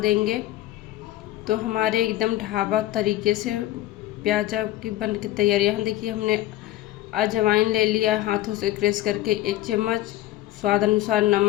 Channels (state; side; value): quieter; right; 15.1 dB